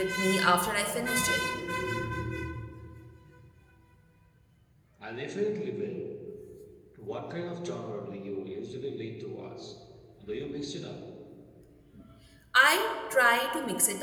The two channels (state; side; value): identical; both; correlation 1.00